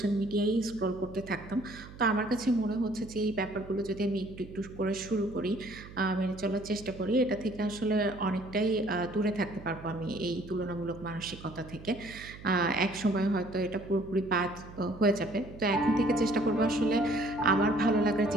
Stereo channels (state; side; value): noise; right; hum, 16 dB below the sound